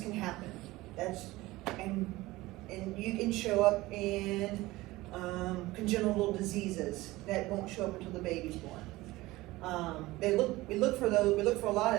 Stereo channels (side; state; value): left; quieter; 19.2 dB